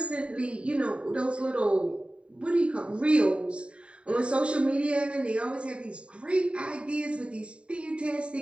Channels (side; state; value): left; late; 0.058 ms